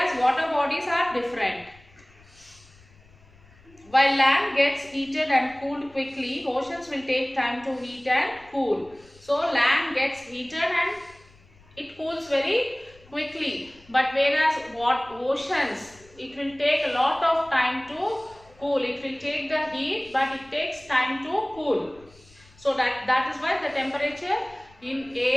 water bodies are different. While land gets heated and cooled quickly, oceans will take time to heat and cool. So land gets heated and it cools very quickly, but whereas oceans, it will take a lot of time to cool. It will take the heat, but it takes time to cool. So that is why the temperature in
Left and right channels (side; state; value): left; noise; rumble, 27 dB below the sound